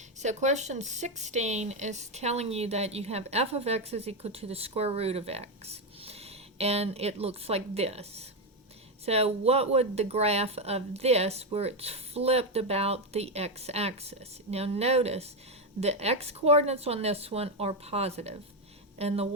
So question 16 is telling you that you have f of x is equal to the square root of x. And it looks like this. So what would the graph of this, where it's flipped about the x-axis? Now notice, the x-coordinates on this one are positive, and the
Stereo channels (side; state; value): both; normal; correlation 0.07